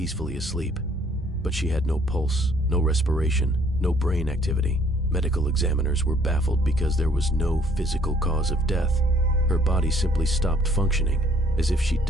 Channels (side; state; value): both; normal; correlation 0.61